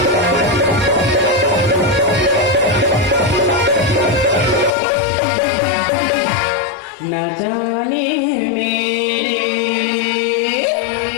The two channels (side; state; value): right; drops out; at 4.7 s